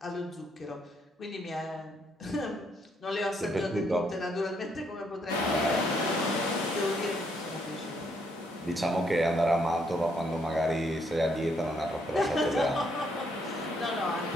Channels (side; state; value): both; normal; correlation 0.73